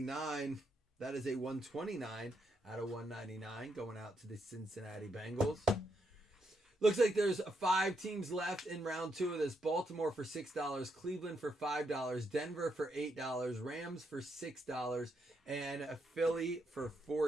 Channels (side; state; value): both; normal; correlation 0.79